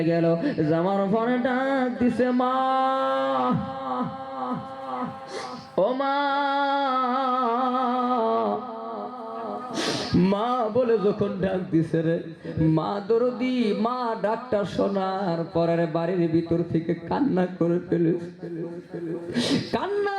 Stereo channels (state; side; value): identical; both; correlation 1.00